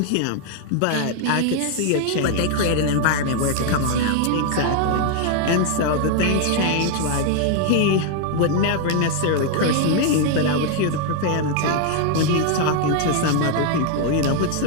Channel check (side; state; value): both; different; correlation 0.00